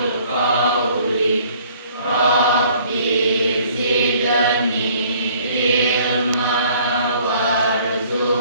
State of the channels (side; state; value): both; inverted; correlation -0.57